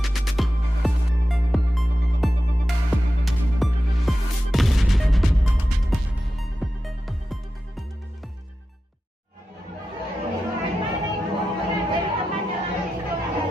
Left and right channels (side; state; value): both; normal; correlation 0.92